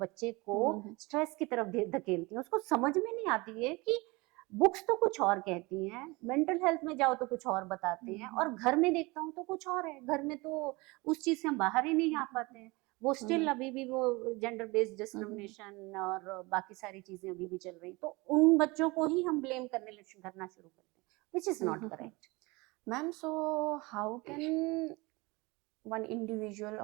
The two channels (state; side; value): quieter; left; 24.5 dB